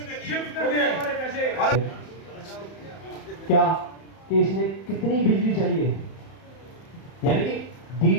क्या कि इसने कितनी बिजली चाहिए, यानी कि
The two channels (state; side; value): late; right; 31 ms